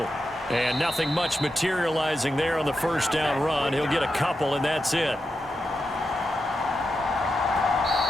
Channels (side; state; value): both; normal; correlation 0.88